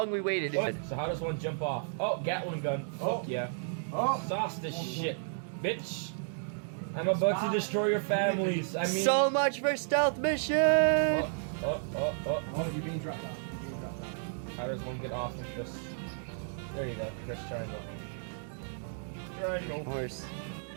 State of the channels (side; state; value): left; silent; digital silence